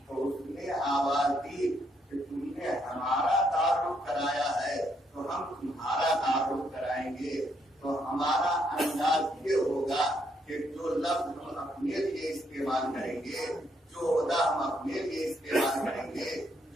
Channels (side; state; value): both; normal; correlation 0.74